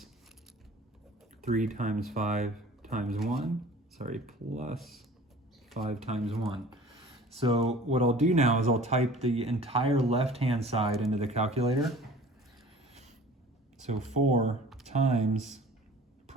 3 times 5 times 1? Sorry, plus 5 times 1. So what I'll do now is I'll type the entire left-hand side into the calculator. So 4 times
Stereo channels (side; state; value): both; normal; correlation 0.46